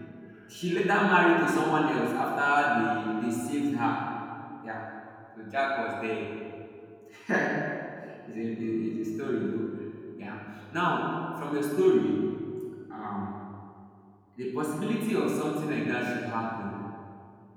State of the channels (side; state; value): both; identical; correlation 1.00